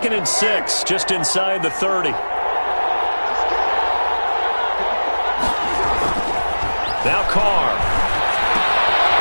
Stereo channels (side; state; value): both; inverted; correlation -1.00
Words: and 6, just inside the 30. Now Carr.